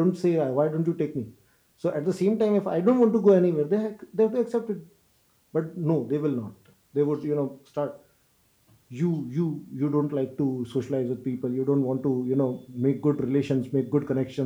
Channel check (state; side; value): identical; both; correlation 1.00